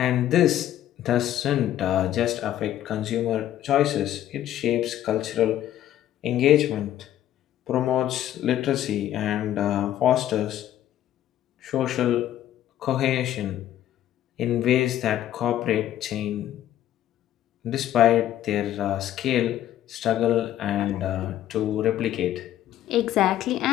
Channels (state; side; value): quieter; right; 12.2 dB